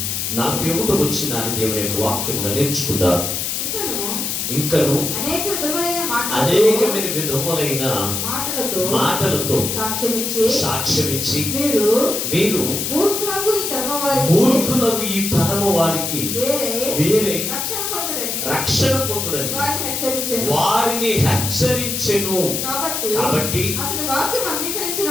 41వ వచనాన్ని దేవుని యొక్క వాక్యముగా నేర్చుకుందాం. ఇంకను అనేకమైన విధములైన మాటలతో సాక్ష్యమిచ్చి మీరు మూర్ఖులకు ఈ తరము వారికి వేరే రక్షణ పొందుడని వారిని హెచ్చరించెను. కాబట్టి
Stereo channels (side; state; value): left; noise; hiss, 2 dB below the sound